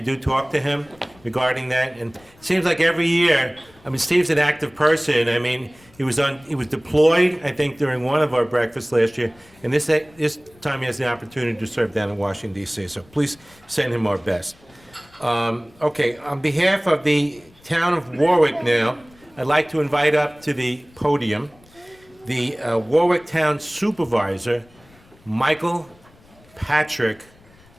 talk to him regarding that. And it seems like every year, I mean, Steve's an active person. I mean, he was deployed, I think, during one of our breakfasts last year. And this time he has the opportunity to serve down in Washington, D.C. So please send him our best. Okay, on behalf of the town of Warwick now, I'd like to invite up to the podium the Warwick Town Supervisor, Michael Patrick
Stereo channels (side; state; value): left; noise; rumble, 28 dB below the sound